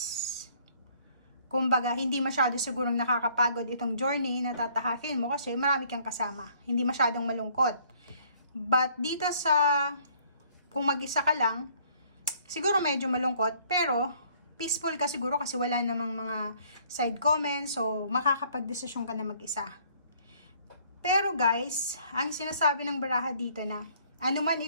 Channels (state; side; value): inverted; both; correlation -0.60